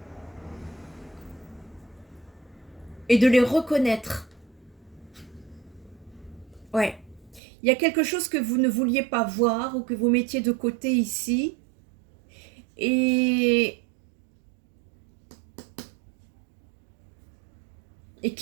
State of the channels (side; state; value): left; drops out; at 7.4 s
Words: de les reconnaître. Ouais. Il y a quelque chose que vous ne vouliez pas voir ou que vous mettiez de côté ici. Et